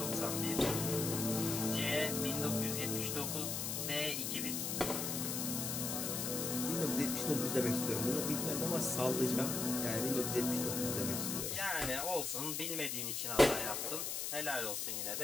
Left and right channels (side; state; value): left; noise; hiss, 1 dB below the sound